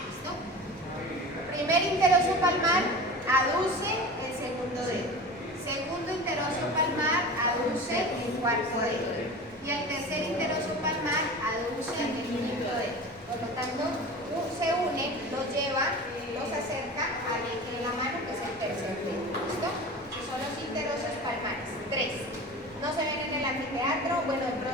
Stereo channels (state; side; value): normal; both; correlation 0.34